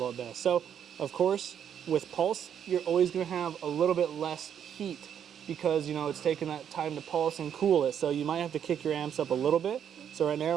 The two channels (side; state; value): left; quieter; 8.8 dB